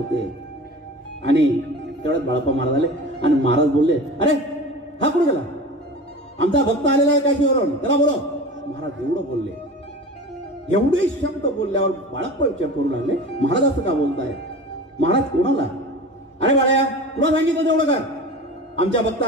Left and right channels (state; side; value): normal; both; correlation 0.35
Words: आणि तेवढ्यात बाळप्पा महाराज आले आणि महाराज बोलले, अरे हा कुठे गेला? आमचा भक्त आलेला आहे काशीवरून, त्याला बोलो। महाराज एवढं बोलले, एवढे शब्द बोलल्यावर बाळप्पा विचार करू लागले, महाराज असं का बोलताय? महाराज कोणाला? अरे बाळ्या, तुला सांगितलं तेवढं कर, आमच्या